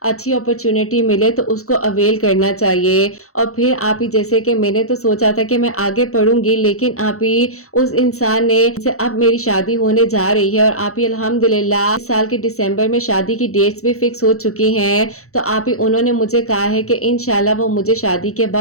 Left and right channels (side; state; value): right; late; 0.64 ms